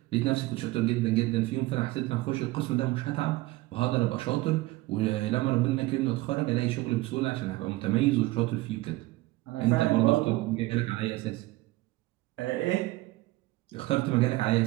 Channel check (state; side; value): quieter; left; 19.3 dB